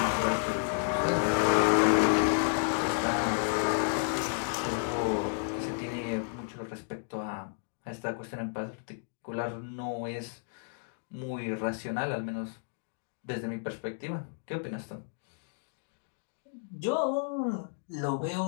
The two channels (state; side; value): silent; right; digital silence